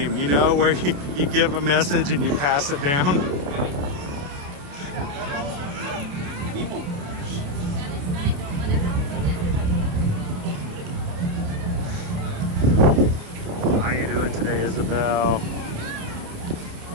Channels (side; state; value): left; late; 28 ms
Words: you know, where you give a message and you pass it down. How you doing today, Isabel?